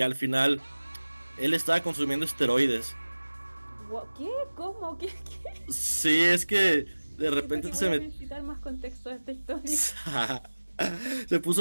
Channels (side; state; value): both; inverted; correlation -1.00